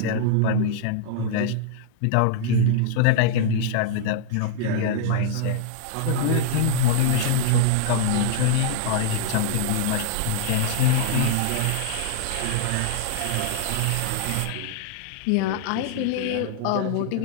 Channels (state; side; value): different; both; correlation -0.01